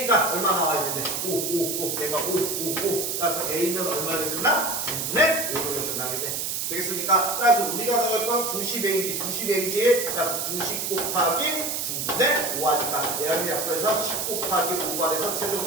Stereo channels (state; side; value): noise; right; hiss, 2 dB below the sound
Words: 얼마 나와야 되는데 5 얘가 5 따라서 A는 얼마를 줬나? 9분의 5를 결정하겠네. 되겠습니까? 따라서 우리가 나갈 건 90A지. 따라서 90 곱하기 9분의 5 하니까 얘를 앞으로 해서 10 곱하기 5가 돼서